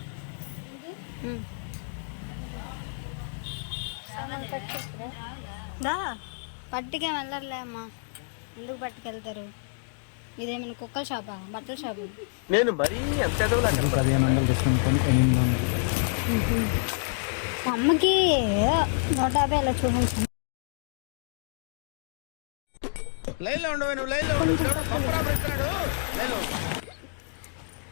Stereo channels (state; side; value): silent; right; digital silence